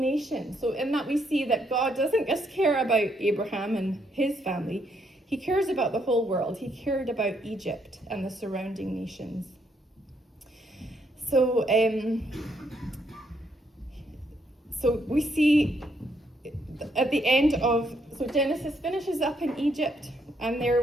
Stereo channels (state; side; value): normal; both; correlation 0.73